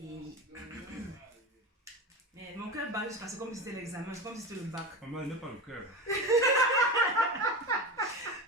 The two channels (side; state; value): both; normal; correlation 0.25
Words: Mais mon cœur bat juste parce que comme si c'était l'examen, c'est comme si c'était le bac. Maman, elle n'a pas le cœur.